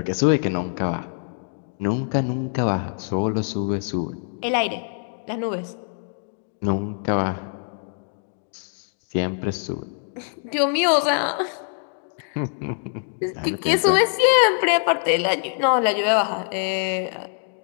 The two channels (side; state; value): right; silent; 63 dB below the other